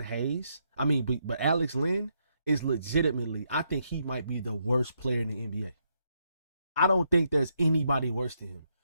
Hayes, but Alex Lynn is legitimately, I think he might be the worst player in the NBA. I don't think there's anybody worse than him.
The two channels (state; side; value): inverted; both; correlation -0.78